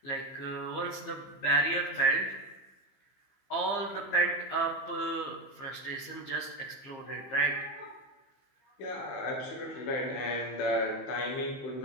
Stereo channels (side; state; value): right; late; 15 ms